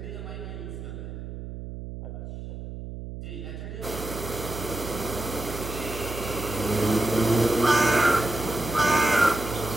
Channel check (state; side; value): noise; right; hum, 9 dB below the sound